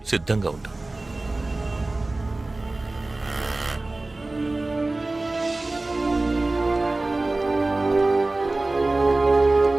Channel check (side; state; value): left; quieter; 3.0 dB